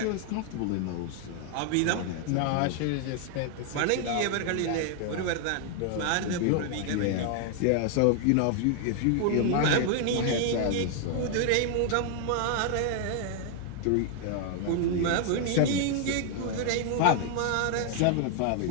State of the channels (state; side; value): different; both; correlation 0.00